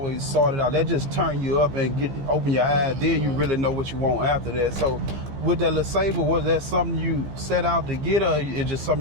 sorted out. That just turn you up and open your eyes, then you really know what you want after that. So with that little Sabre, was that something you set out to get, or it just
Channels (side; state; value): left; late; 15 ms